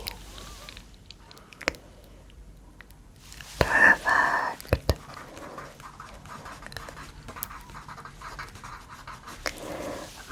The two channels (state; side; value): identical; both; correlation 1.00